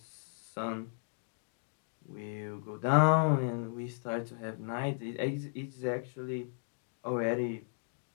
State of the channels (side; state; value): right; silent; digital silence